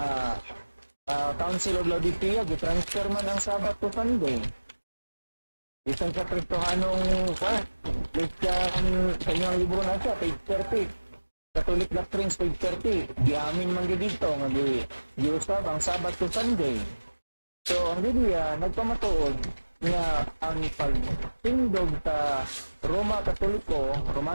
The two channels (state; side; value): inverted; both; correlation -1.00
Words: Council of Laodicea gitransfer man ang Sabat to Sunday. Bisan sa Kristohanong Christian kanyang libro na siya, page 30. Catholic Doctrines, page 30. Giamin man gyud dito nga giusab ang Sabat to Sunday. So ang Biblia nagpamatuod nga ang pagtindog sa Romano